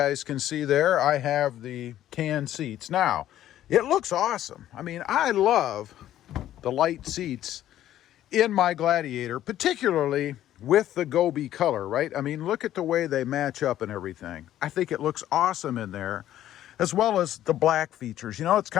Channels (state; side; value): quieter; right; 12.5 dB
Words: can see there, I have the tan seats. Now, it looks awesome. I mean, I love the light seats in my Gladiator, particularly with the Gobi color, right? I mean, look at the way they match up and everything. I think it looks awesome in there, as well as the black features. It's